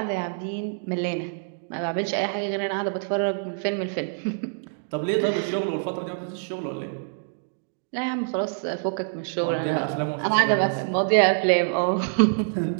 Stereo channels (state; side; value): silent; left; digital silence